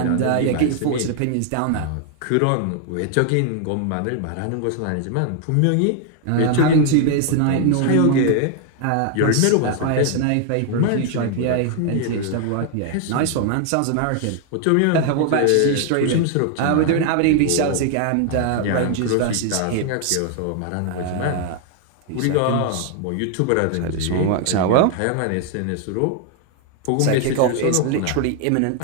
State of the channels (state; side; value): different; both; correlation 0.00